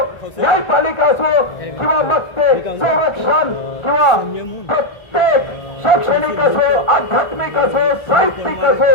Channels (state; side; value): late; right; 1.4 ms